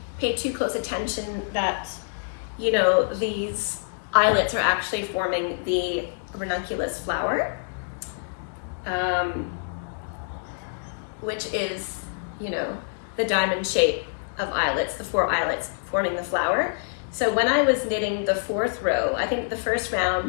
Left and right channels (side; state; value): right; silent; digital silence